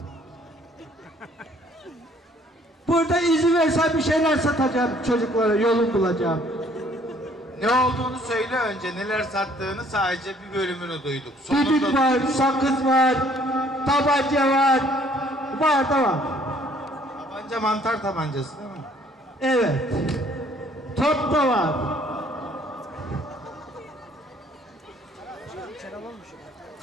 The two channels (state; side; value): normal; both; correlation 0.60